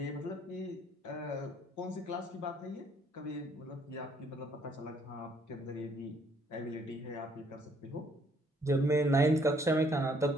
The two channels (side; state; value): both; normal; correlation 0.65